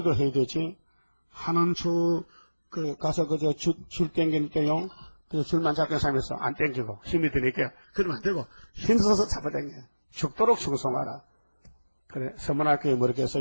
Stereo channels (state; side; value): inverted; both; correlation -1.00